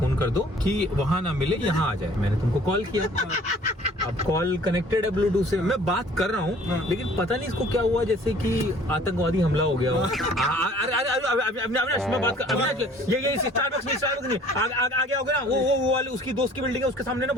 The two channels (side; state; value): both; normal; correlation 0.53